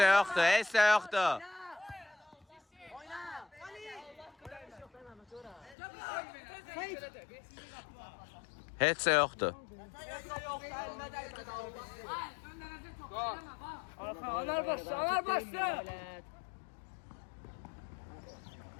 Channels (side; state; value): right; drops out; at 5.8 s